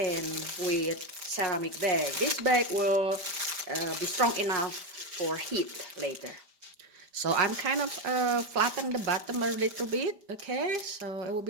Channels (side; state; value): left; late; 5.0 ms